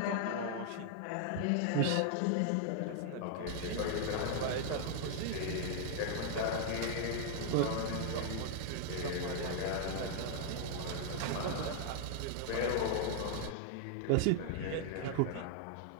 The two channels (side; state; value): both; different; correlation 0.00